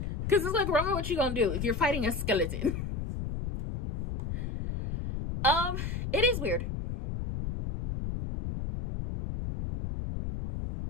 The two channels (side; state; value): left; noise; rumble, 4 dB below the sound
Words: Because it's like, Roman, what you gonna do if you're fighting a skeleton? It is weird.